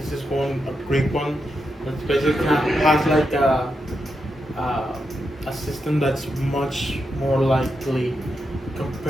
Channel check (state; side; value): normal; both; correlation 0.85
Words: is a great one that basically has like a system that's much more likely